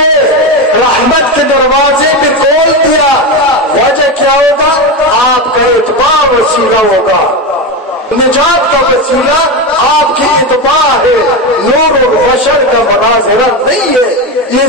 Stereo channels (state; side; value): normal; both; correlation 0.16